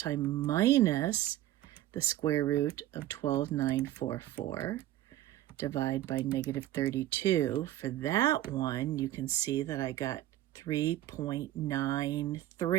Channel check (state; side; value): quieter; left; 14.3 dB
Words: minus the square root of 12,944. Divide by negative 32. For that one, you can see that I got